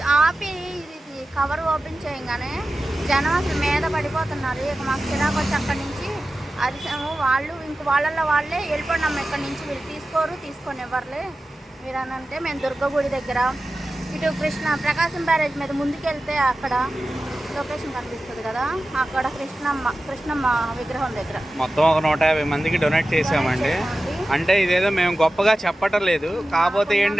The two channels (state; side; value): normal; both; correlation 0.94